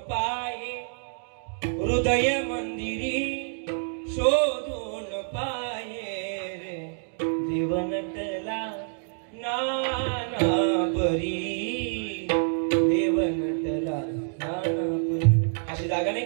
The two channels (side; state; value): left; silent; digital silence